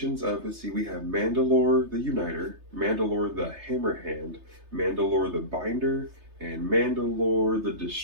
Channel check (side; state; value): left; late; 3.3 ms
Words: of, let's see, we have Mandalore the Uniter, Mandalore the Hammerhand, Mandalore the Binder, and Mandalore the